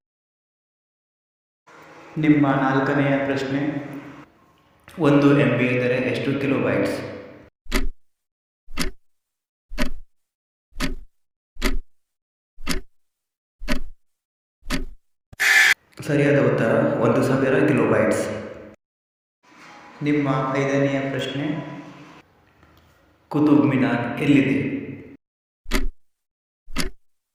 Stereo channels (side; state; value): both; identical; correlation 1.00